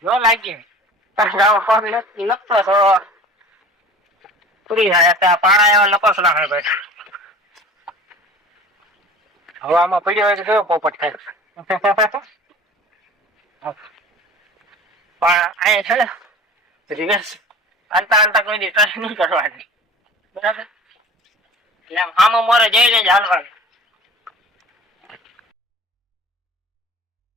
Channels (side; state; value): both; normal; correlation 0.41